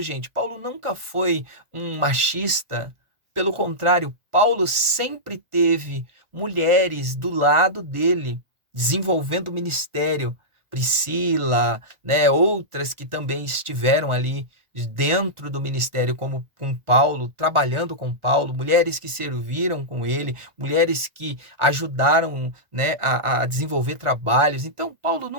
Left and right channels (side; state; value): left; late; 1.4 ms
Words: Paulo nunca foi um machista. Pelo contrário, Paulo sempre teve mulheres do lado dele, desenvolvendo o ministério. Priscila, né, outras que também estiveram ali dentro do ministério, como com Paulo, trabalhando com Paulo, mulheres que serviram com ele, mulheres que ajudaram, né, a desenvolver trabalhos. Então, Paulo